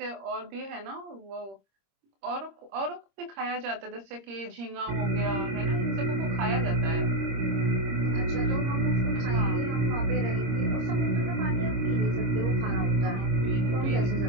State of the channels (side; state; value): left; late; 26 ms